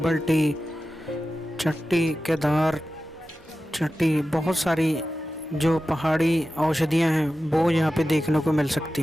टी, चट्टी, केदार चट्टी, बहुत सारी जो पहाड़ी औषधियाँ हैं वो यहाँ पे देखने को मिल सकती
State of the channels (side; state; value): both; normal; correlation 0.94